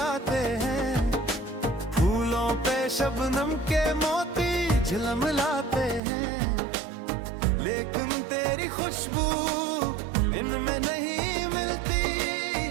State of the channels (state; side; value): drops out; left; at 6.0 s